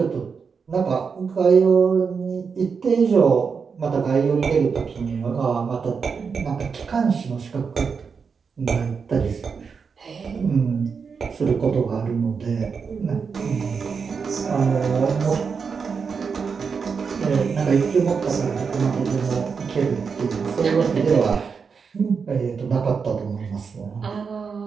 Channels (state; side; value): quieter; left; 5.7 dB